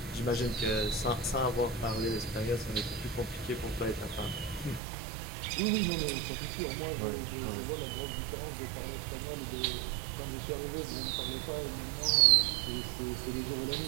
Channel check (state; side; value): drops out; left; at 4.8 s